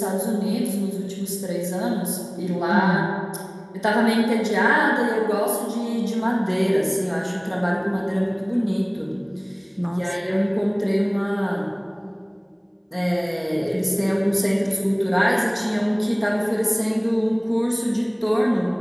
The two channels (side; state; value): both; identical; correlation 1.00